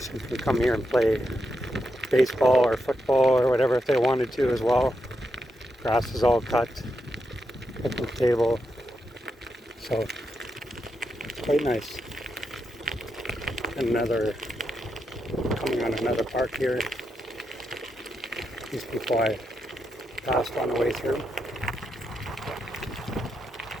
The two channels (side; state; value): both; normal; correlation 0.84